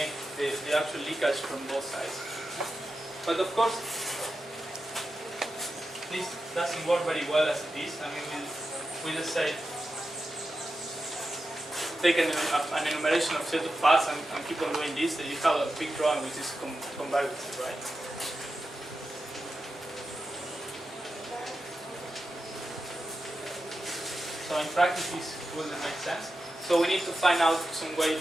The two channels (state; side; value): normal; both; correlation 0.90